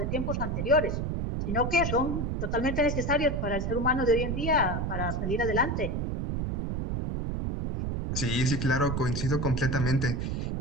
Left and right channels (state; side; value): noise; right; rumble, 1 dB below the sound